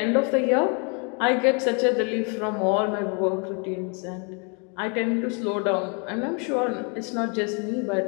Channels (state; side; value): quieter; right; 36.1 dB